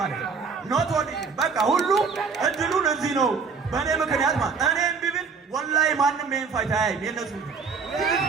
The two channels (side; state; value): left; quieter; 5.3 dB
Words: ነው። ኖት ኦንሊ በቃ ሁሉ እድሉን እዚህ ነው በእኔ ምክንያት ማለት እኔም ቢብል ወላሂ ማንም ይሄን ፋይት አያይም። የነሱ